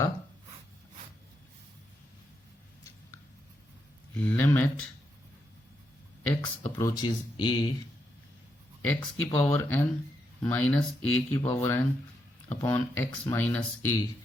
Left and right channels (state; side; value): normal; both; correlation 0.81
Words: limit x approaches a, x की पावर n माइनस a की power n upon x minus a